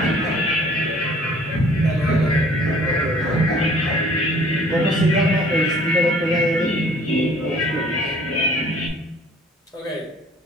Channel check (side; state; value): both; normal; correlation 0.54